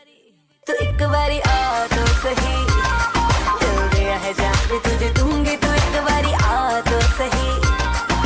एक बारी आ तो सही, दिल दिया है जान भी तुझे दूंगी, तू एक बारी आ तो सही,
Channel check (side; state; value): both; identical; correlation 1.00